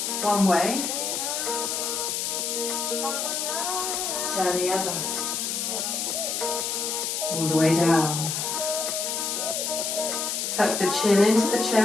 one way, turn the other, all the way down. Tuck the chin into the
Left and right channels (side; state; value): left; noise; hiss, 1 dB below the sound